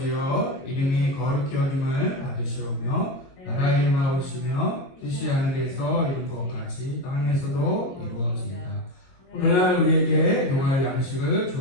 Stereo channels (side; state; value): right; late; 22 ms